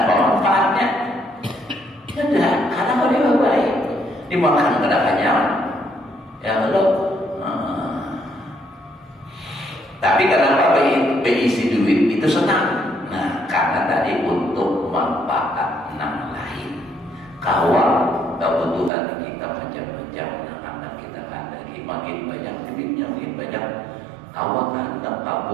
manfaatnya? Tidak, karena kalau dia baik, dimakan kada kenyang. Ya Allah. Tapi kenapa berisi duit itu senang? Nah, karena tadi untuk manfaat yang lain. Kawan kebutuhan kita macam-macam, anak kita lagi makin banyak duitnya, makin banyak. Kawan hendak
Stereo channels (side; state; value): left; drops out; at 18.9 s